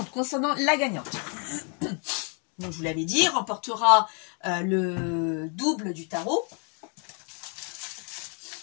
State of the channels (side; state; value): right; quieter; 37.9 dB